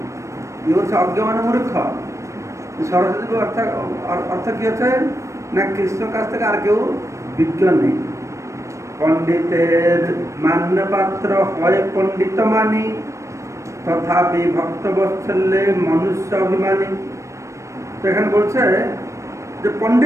কি হচ্ছে অজ্ঞ মানে মূর্খ। সরস্বতী অর্থ কি হচ্ছে না, কৃষ্ণের কাছ থেকে আর কেউ বিজ্ঞ নেই। পণ্ডিতের মান্য পাত্র হয় পণ্ডিত মানি, তথাপি ভক্ত বৎসল্যে মনুষ্য অভিমানী। তো এখানে বলছে যে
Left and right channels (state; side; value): late; left; 0.15 ms